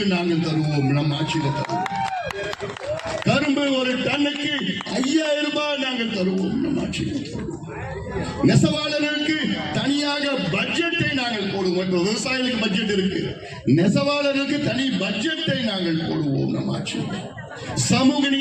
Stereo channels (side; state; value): both; identical; correlation 1.00